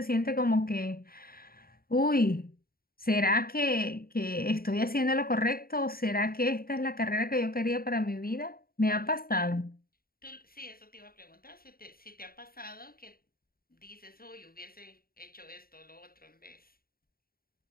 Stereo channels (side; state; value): right; late; 0.43 ms